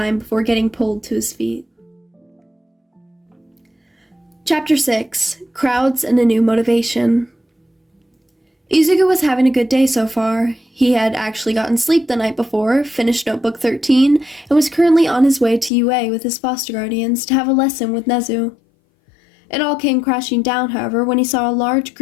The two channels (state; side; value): drops out; right; at 15.7 s